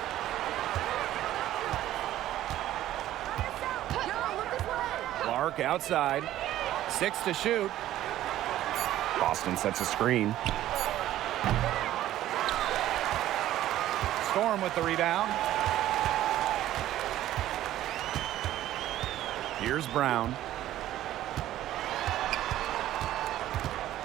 Clark outside. 6 to shoot. Boston sets a screen. Storm with the rebound. Here's Brown.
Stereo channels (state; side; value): quieter; left; 13.5 dB